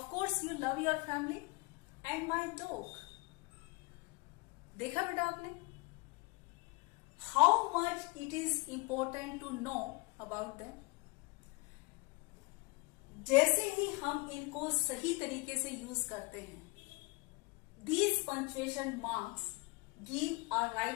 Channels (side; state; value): right; quieter; 26.9 dB